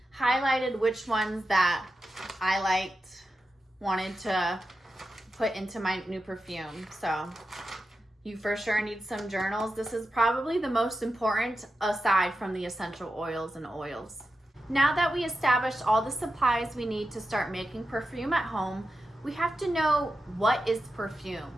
highlighted which ones that I wanted to put into my new perfume. So you for sure need some journals. This is probably the most important aside from the essential oils and oils. Now that we established all the supplies we need to start making perfume at home, we have to know what is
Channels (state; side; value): normal; both; correlation 0.90